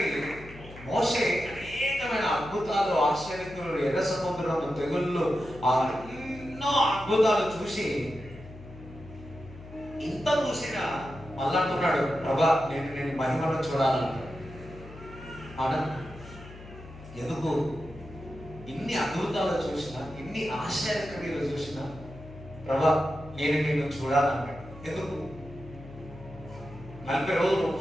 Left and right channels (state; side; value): noise; left; hum, 16 dB below the sound